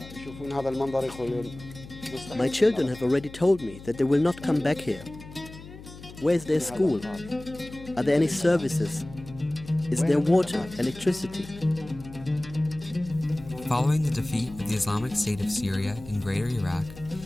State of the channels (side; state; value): left; noise; hum, 16 dB below the sound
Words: My children have already told me that they will not come back here. Where is their school? Are there any services? Is there water, electricity? Following the defeat of the Islamic State of Syria in Greater Iraq,